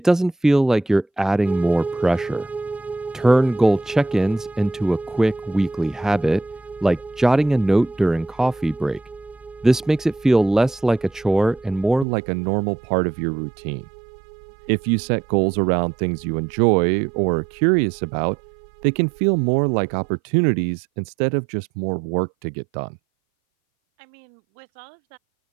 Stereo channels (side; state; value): left; drops out; at 12.1 s